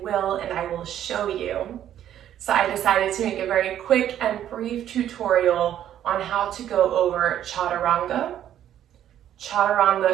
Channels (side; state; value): left; quieter; 11.0 dB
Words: will, and I will show you. So I decided to make a very quick and brief tutorial on how to go over Chaturanga,